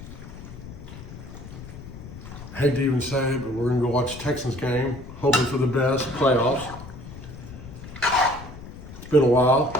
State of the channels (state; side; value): noise; left; rumble, 14 dB below the sound